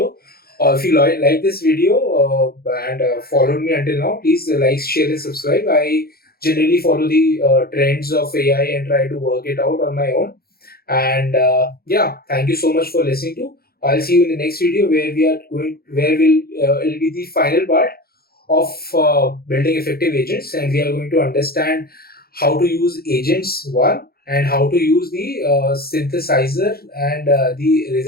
If you like this video and followed me until now, please like, share, and subscribe. I generally follow the trends of AI and try to work it out on my own. And yeah, thank you so much for listening to. I'll see you in the next video where it'll be the final part of building effective agents, and we are going to understand how to use agents one and how to use the synthesizer and the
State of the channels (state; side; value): late; right; 0.44 ms